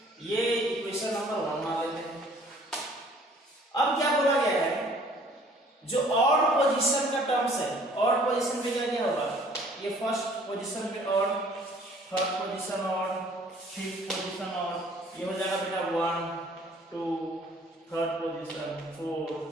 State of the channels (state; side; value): normal; both; correlation 0.55